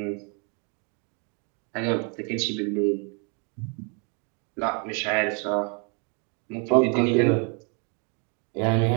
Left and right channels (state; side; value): quieter; left; 36.4 dB